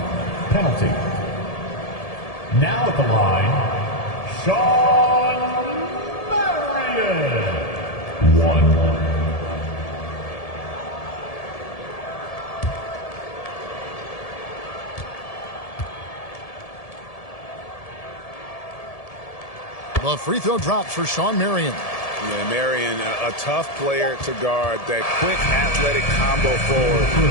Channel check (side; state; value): right; late; 1.7 ms